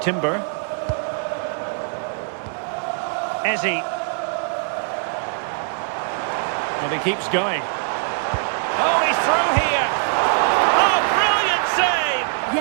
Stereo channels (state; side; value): silent; left; digital silence